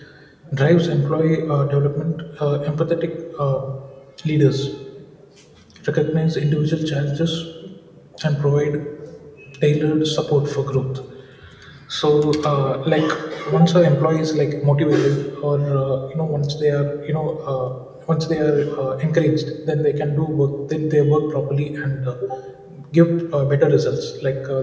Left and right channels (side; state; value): both; identical; correlation 1.00